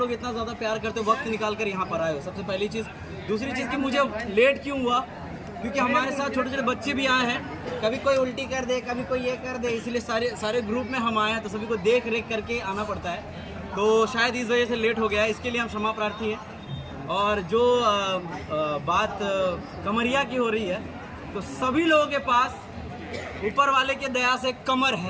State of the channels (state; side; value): identical; both; correlation 1.00